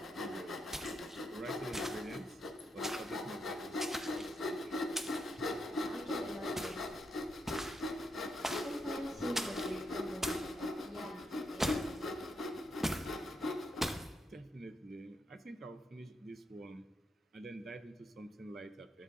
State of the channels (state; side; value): normal; both; correlation 0.79